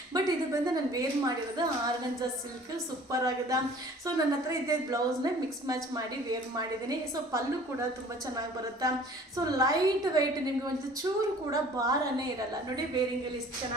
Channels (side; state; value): both; normal; correlation 0.49